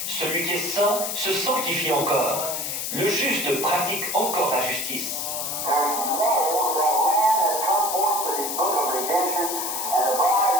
celui qui est saint se sanctifie encore. Le juste pratique encore la justice. There's no that Lamb has come forth with his book of redemption, and the bride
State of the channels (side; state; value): left; noise; hiss, 3 dB below the sound